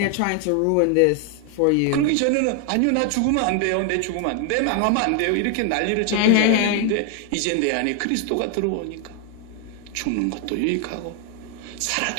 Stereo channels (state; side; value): different; both; correlation 0.00